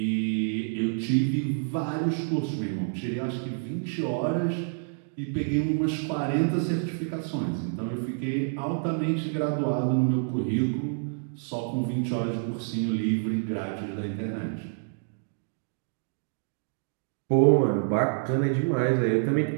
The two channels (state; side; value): silent; left; digital silence